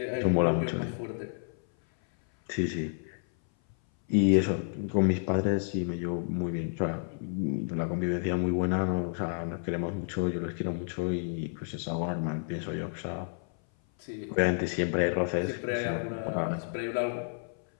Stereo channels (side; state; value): right; silent; 57 dB below the other